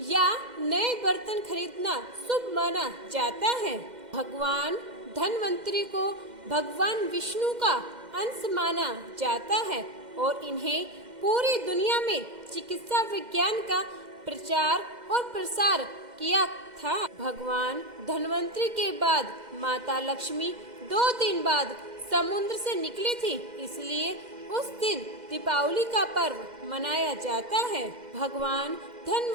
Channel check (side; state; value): left; late; 2.0 ms